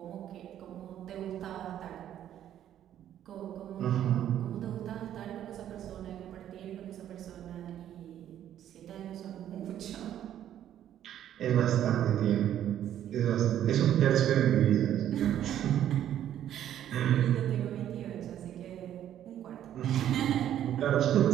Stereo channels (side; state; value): left; quieter; 11.0 dB